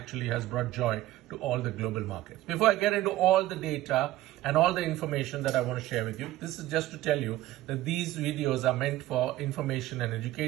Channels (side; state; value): left; quieter; 15.8 dB